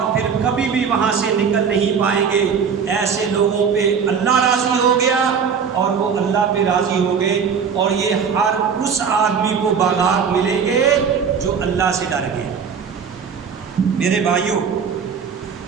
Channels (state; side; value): quieter; left; 6.5 dB